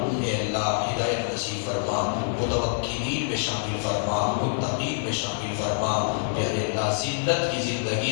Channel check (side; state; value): right; silent; 61 dB below the other